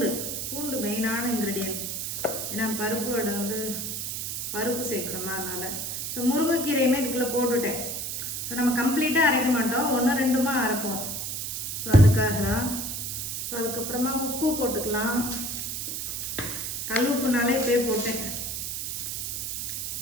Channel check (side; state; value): right; noise; hiss, 3 dB below the sound